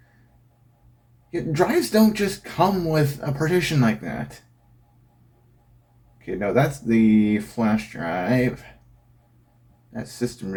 Yeah, drives don't just come with a partition like that. Okay, no, that's the flash drive. That's system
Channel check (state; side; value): identical; both; correlation 1.00